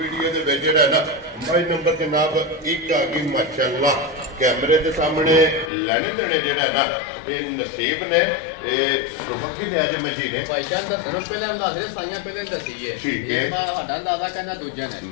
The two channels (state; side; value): drops out; right; at 5.7 s